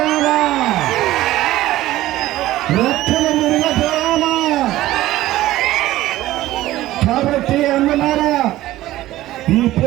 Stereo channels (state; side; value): quieter; left; 15.7 dB